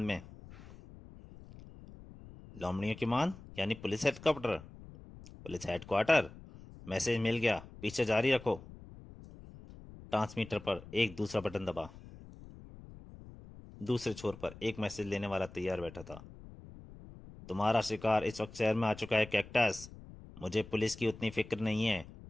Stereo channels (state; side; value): noise; left; rumble, 17 dB below the sound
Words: में। लोमड़ियों की मान यानी police headquarter. Police headquarter. Message मिल गया, पीछे जारी रखो। ट्रांसमीटर पर एक दूसरा बटन दबा। दूसरे छोर पर एक मैसेज लेने वाला तैयार बैठा था। तुम्हारा शिकार इस वक्त शहर में आ चुका है कैक्टस। मुझे पुलिस की उतनी फिक्र नहीं है